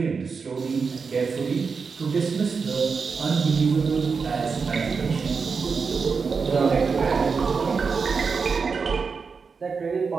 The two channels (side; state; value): left; quieter; 5.2 dB